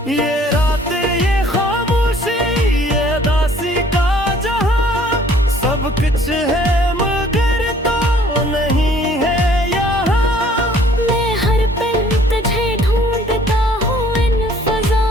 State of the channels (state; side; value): normal; both; correlation 0.57